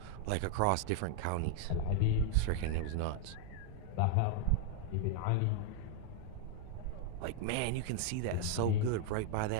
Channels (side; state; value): both; different; correlation 0.00